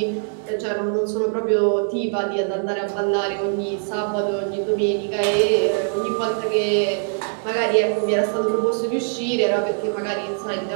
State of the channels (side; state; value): left; silent; digital silence